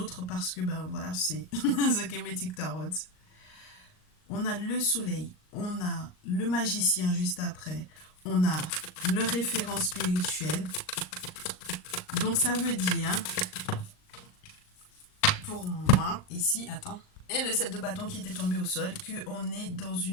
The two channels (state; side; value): late; right; 38 ms